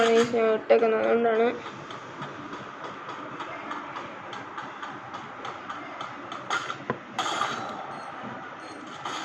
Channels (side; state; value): both; identical; correlation 1.00